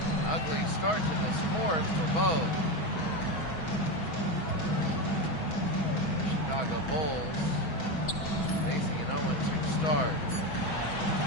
Ugly start to the fourth for both. Chicago Bulls facing an 0-2 start.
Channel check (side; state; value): right; late; 6.2 ms